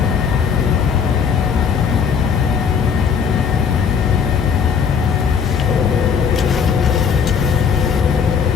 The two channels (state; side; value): quieter; right; 6.6 dB